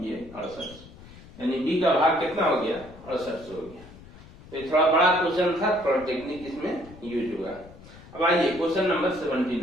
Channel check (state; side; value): noise; left; rumble, 19 dB below the sound